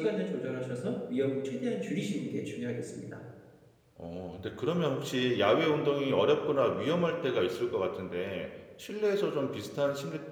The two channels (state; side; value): identical; both; correlation 1.00